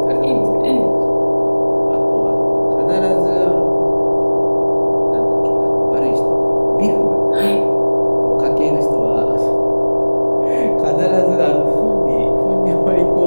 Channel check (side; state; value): both; inverted; correlation -1.00